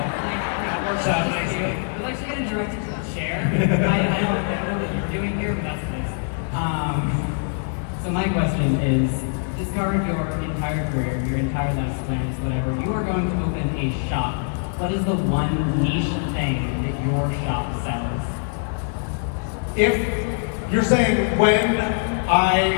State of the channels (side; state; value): right; silent; 60 dB below the other